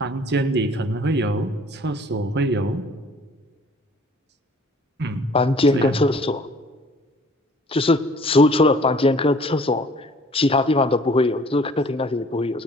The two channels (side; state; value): both; normal; correlation 0.54